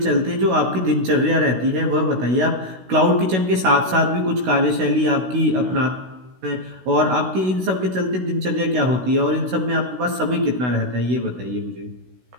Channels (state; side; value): late; left; 16 ms